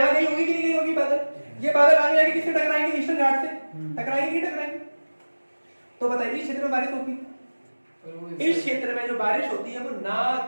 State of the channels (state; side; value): inverted; both; correlation -1.00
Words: गई होगी कि नहीं गई होगी बादल? ये बादल आगे जाके किससे टकराएंगे? ईस्टर्न घाट से टकराएंगे कि टकराएंगे? तो बताइए, इस क्षेत्र में बारिश होगी? इस क्षेत्र में जो बारिश होती है वो ना